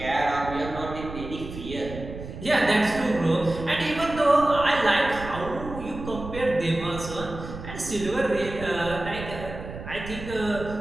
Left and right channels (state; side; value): noise; right; rumble, 11 dB below the sound